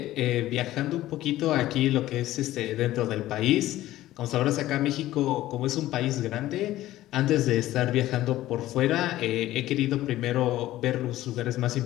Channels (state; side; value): quieter; right; 15.1 dB